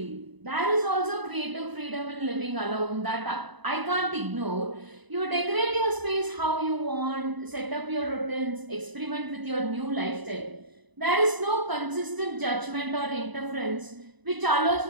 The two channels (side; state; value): left; late; 1.0 ms